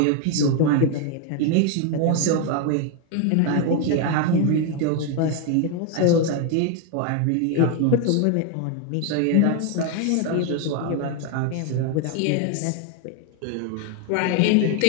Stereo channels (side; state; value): both; different; correlation 0.01